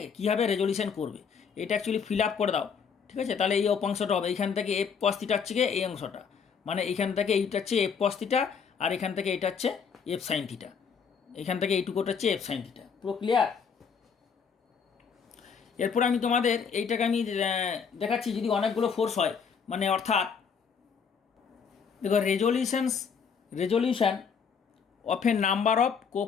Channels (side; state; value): right; quieter; 6.4 dB